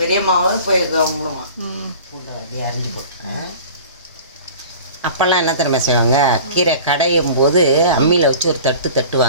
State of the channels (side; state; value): both; inverted; correlation -0.41